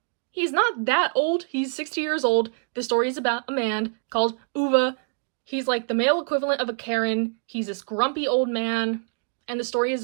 he's not that old. He's 60 years old. The story is about a man called Uva. He's like the male equivalent of a Karen. He's this grumpy old man, and the story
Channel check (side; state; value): left; silent; 62 dB below the other